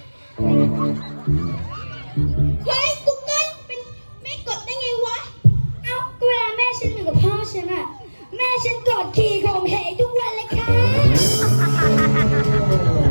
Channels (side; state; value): both; inverted; correlation -1.00